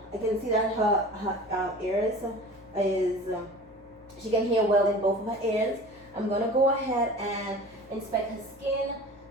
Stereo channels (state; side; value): normal; both; correlation 0.39